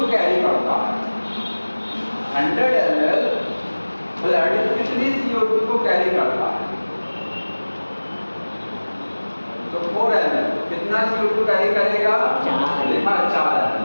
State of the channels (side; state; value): both; inverted; correlation -1.00